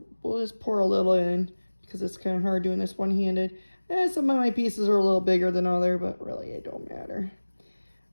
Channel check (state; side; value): inverted; both; correlation -1.00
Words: just pour a little in because it's kind of hard doing this one-handed. Some of my pieces are a little bigger than other, but really it don't matter.